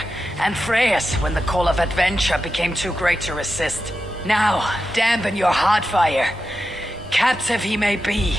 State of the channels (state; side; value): normal; both; correlation 0.90